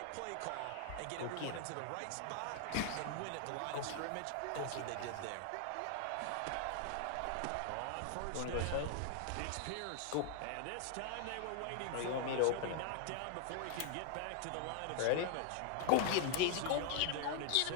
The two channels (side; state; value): both; different; correlation 0.00